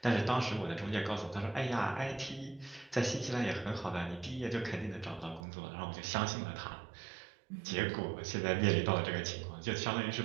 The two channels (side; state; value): left; drops out; at 5.4 s